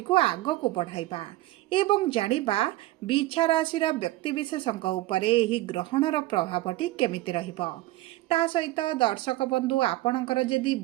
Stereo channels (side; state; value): left; quieter; 17.6 dB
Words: को आगो को बढ़ाइबा एवं जानिबा बिछा राशिर व्यक्ति विशेषक उपरे एही ग्रहणर प्रभावटी केमिति रहिबो। ता सहित दर्शक बंधु आपणकर जदि